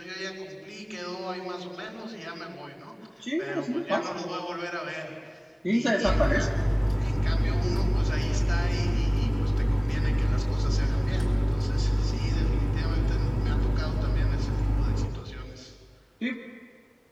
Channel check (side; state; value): both; identical; correlation 1.00